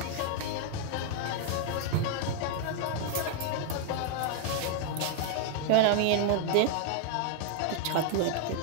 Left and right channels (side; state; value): both; different; correlation 0.00